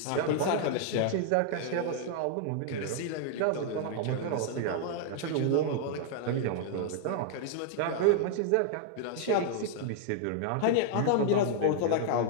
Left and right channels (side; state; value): both; different; correlation 0.00